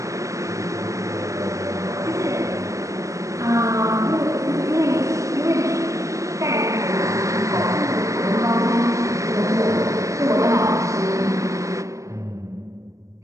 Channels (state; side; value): late; left; 0.15 ms